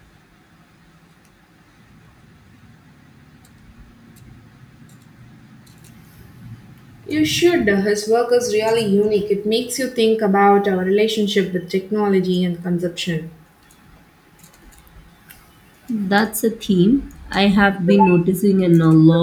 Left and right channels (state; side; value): identical; both; correlation 1.00